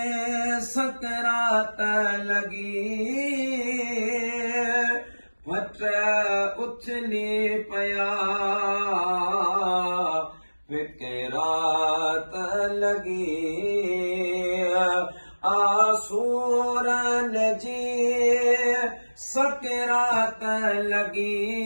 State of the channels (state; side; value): inverted; both; correlation -1.00